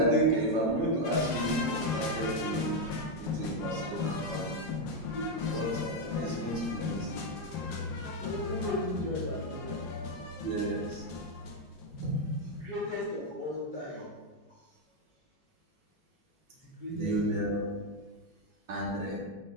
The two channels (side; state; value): both; normal; correlation 0.03